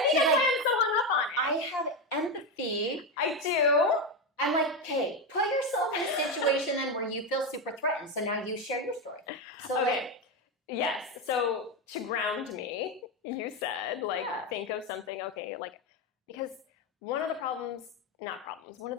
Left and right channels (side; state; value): both; normal; correlation 0.12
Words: why I'm so hung up on it. I have empathy. I do. I'm like, okay, put yourself in a situation then where you feel super threatened. So now you share your story. So okay. Like, yes. So to ground me, you said, like, think of something, okay, like, because one of the one